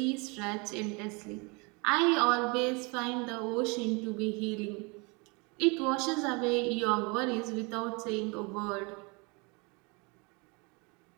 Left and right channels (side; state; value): left; quieter; 29.8 dB